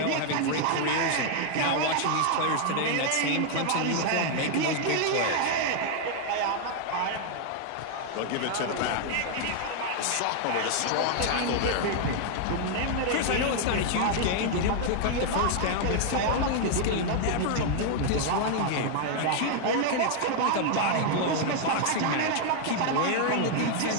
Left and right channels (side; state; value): both; different; correlation 0.00